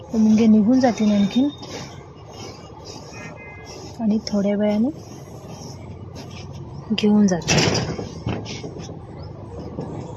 मुंगे निघून जातील आणखीन आणि थोड्या वेळाने घेऊन जाते.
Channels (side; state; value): both; identical; correlation 1.00